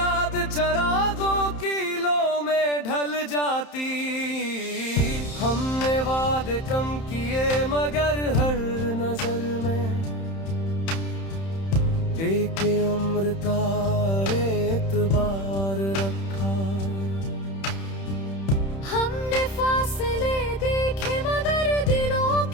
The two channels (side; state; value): right; late; 31 ms